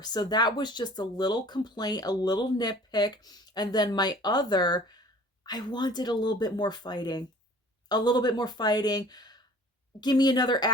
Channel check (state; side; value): normal; both; correlation 0.48